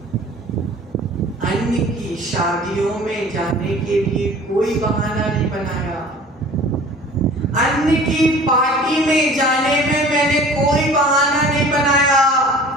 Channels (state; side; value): normal; both; correlation 0.45